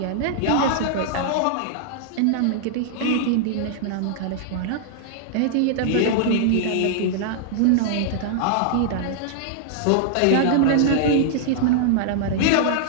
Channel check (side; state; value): both; different; correlation -0.01